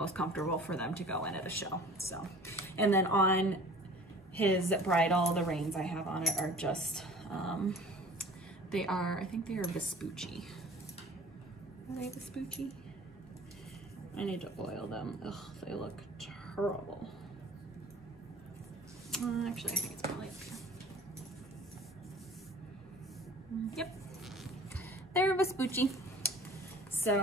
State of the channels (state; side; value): normal; both; correlation 0.46